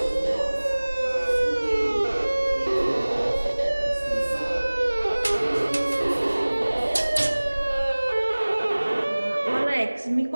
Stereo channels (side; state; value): both; inverted; correlation -1.00